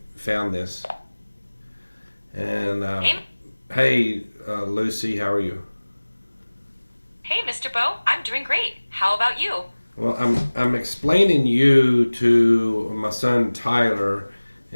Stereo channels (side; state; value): both; inverted; correlation -1.00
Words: found this. And hey, Lucy, how are you? Hey, Mr. Bo, I'm doing great. How about you? Well, I'm explaining you to my son Tyler,